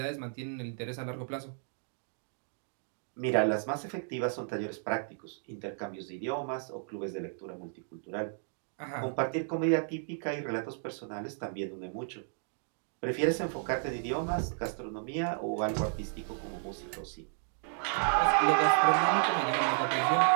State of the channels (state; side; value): silent; left; digital silence